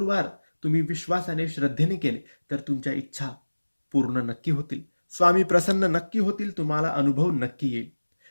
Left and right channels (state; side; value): inverted; both; correlation -1.00